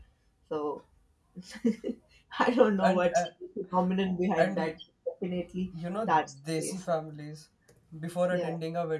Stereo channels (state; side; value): identical; both; correlation 1.00